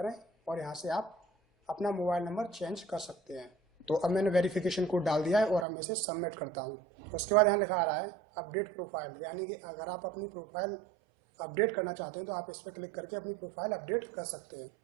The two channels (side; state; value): left; drops out; at 5.7 s